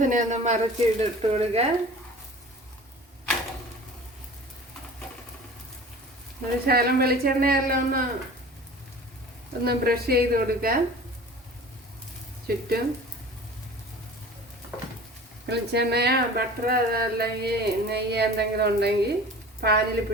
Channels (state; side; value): normal; both; correlation 0.41